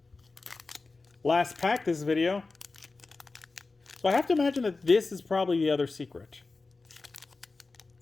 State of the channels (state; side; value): quieter; right; 3.7 dB